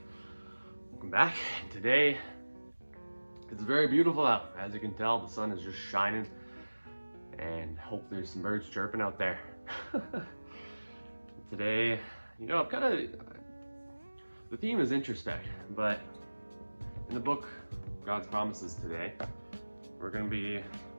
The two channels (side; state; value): both; inverted; correlation -1.00